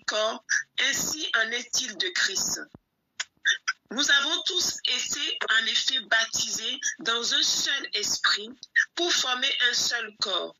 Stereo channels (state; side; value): identical; both; correlation 1.00